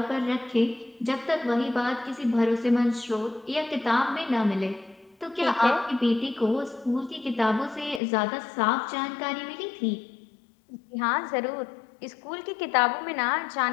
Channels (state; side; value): drops out; right; at 8.0 s